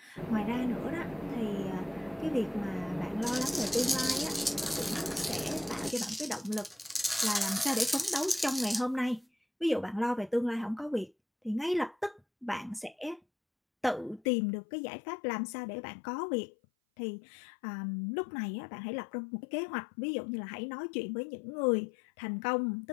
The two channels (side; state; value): right; drops out; at 14.2 s